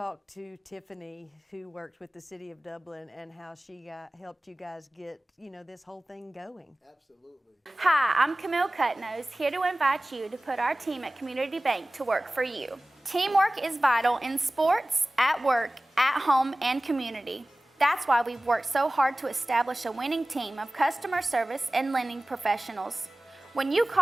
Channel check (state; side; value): normal; both; correlation 0.98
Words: to Tiffany, who worked with the City of Dublin, and how she helped you guys get, this whole thing going. Absolutely. Hi, I'm Camille Cutnose, here to invite you to put our team at Community Bank to work for you. Teamwork is vital in sports, at work, at home, and community. That's why we've worked so hard to establish a winning team of customer service and lending professionals. When you